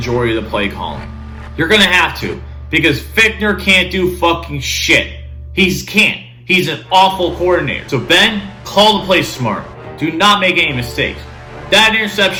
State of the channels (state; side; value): identical; both; correlation 1.00